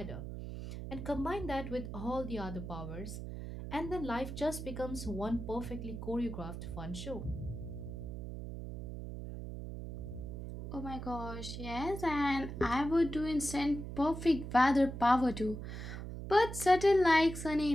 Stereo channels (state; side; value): noise; right; hum, 8 dB below the sound